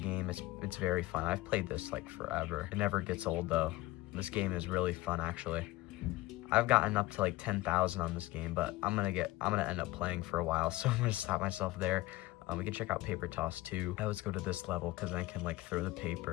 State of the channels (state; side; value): quieter; right; 18.8 dB